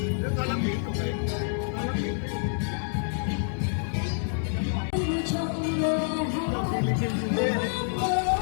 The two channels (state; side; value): silent; right; digital silence